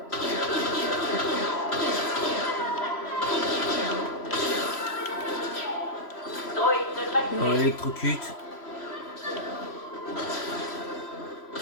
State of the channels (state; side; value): late; right; 3.0 ms